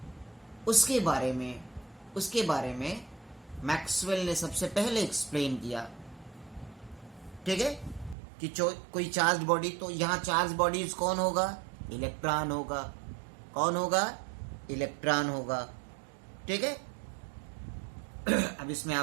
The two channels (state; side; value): drops out; left; at 8.2 s